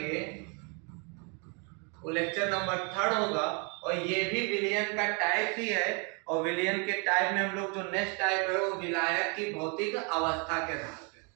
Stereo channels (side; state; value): left; quieter; 34.8 dB